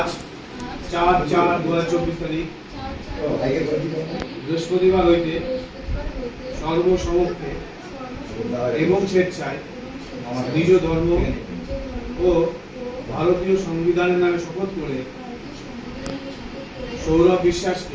4/4/2024 তারিখ বৃহস্পতিবার হইতে সর্বসমক্ষে এবং স্বেচ্ছায় নিজ ধর্ম ও ভারতীয় সংবিধানের নামে শপথ করে সৌরভ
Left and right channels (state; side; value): identical; both; correlation 1.00